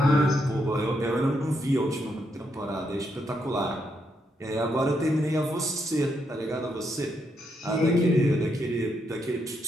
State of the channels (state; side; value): normal; both; correlation 0.79